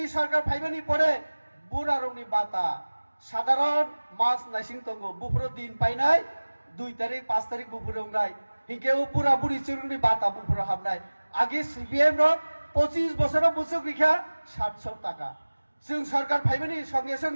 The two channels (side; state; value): both; inverted; correlation -1.00